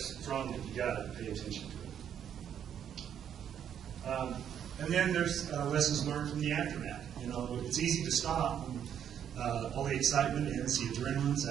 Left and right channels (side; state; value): left; quieter; 9.1 dB